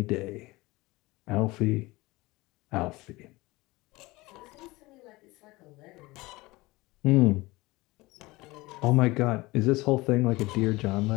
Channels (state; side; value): quieter; right; 21.3 dB